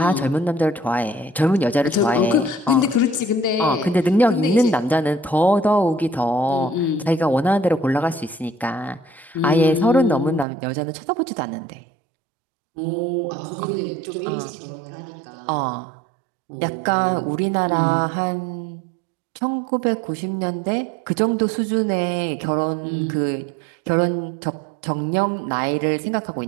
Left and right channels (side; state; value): left; drops out; at 10.5 s